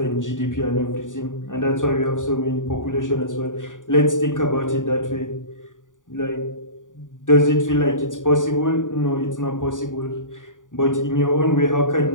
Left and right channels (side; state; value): right; late; 0.88 ms